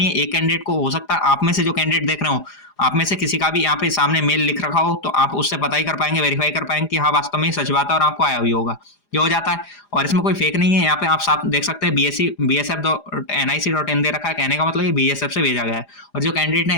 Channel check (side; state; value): right; late; 4.9 ms